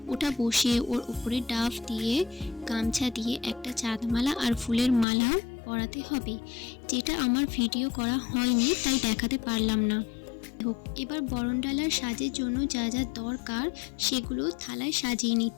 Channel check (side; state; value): right; drops out; at 5.1 s